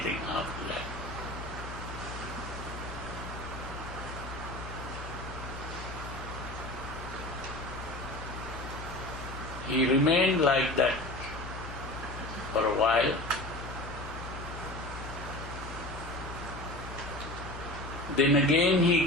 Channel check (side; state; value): left; noise; hum, 10 dB below the sound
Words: after that. He remained like that for a while. Then again he